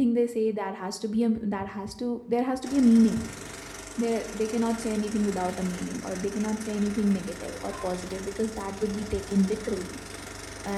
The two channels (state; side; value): identical; both; correlation 1.00